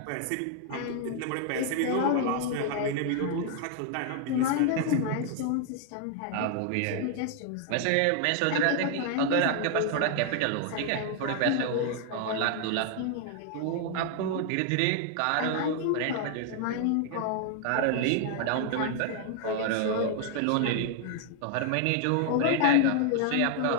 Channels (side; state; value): both; different; correlation 0.00